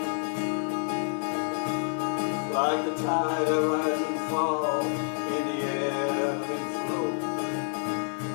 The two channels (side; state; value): right; silent; digital silence